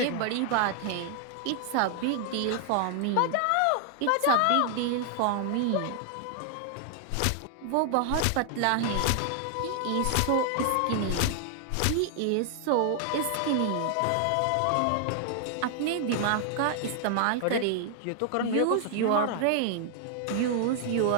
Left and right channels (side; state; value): both; different; correlation 0.00